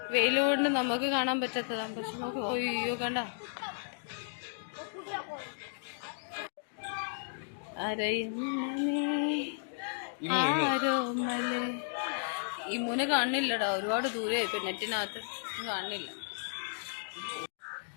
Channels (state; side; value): silent; right; digital silence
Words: വെയിൽ കൊണ്ട് നമുക്ക് കാണാൻ പറ്റാത്തതാണ്. പക്ഷെ നോക്ക്, അയ്യോ കണ്ട ഈ മൂന കാണില്ലടാ, ഒരുപാട് ദൂരെ ഇപ്പൊ നെറ്റിനകത്ത് കാണില്ല.